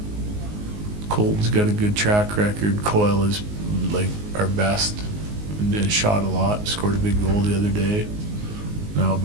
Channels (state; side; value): late; left; 19 ms